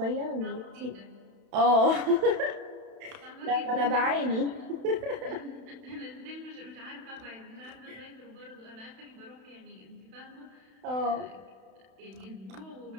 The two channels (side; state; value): left; late; 31 ms